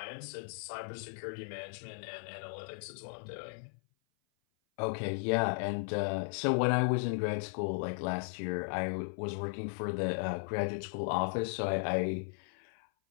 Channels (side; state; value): right; silent; 54 dB below the other